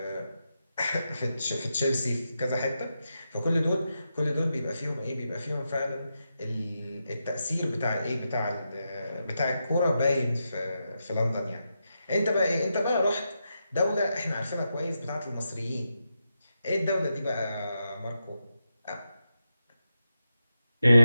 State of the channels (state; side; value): inverted; both; correlation -0.87